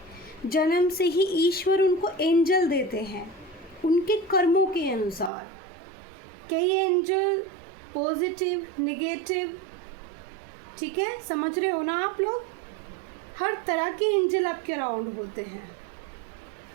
जन्म से ही ईश्वर उनको एंजल देते हैं उनके कर्मों के अनुसार। कई एंजल पॉजिटिव, नेगेटिव, ठीक है, समझ रहे हो ना आप लोग, हर तरह के एंजल आपके अराउंड होते हैं।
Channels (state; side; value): drops out; left; at 5.3 s